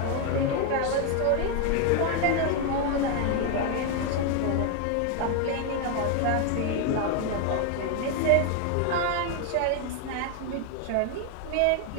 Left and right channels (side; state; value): both; different; correlation 0.01